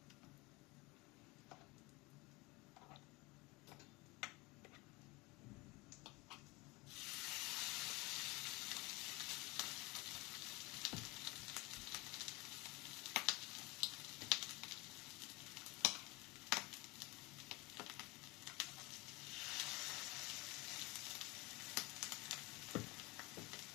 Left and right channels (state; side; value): quieter; right; 24.4 dB